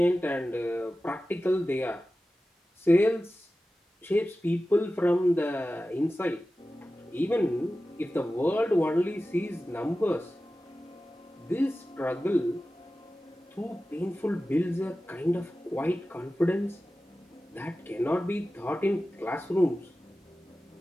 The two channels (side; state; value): both; normal; correlation 0.95